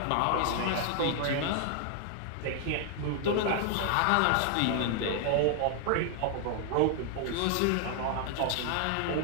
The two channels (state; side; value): different; both; correlation 0.00